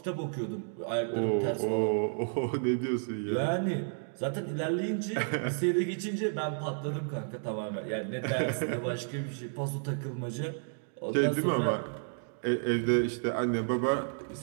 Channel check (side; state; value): left; silent; digital silence